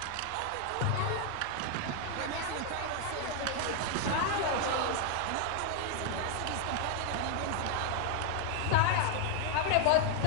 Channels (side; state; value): both; different; correlation 0.00